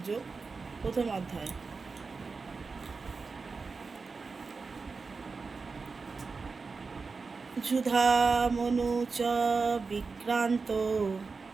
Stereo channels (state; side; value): quieter; left; 4.5 dB